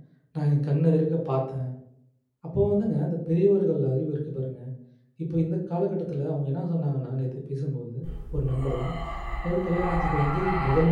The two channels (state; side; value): identical; both; correlation 1.00